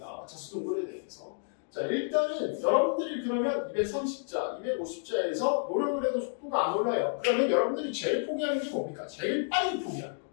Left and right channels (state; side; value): silent; right; digital silence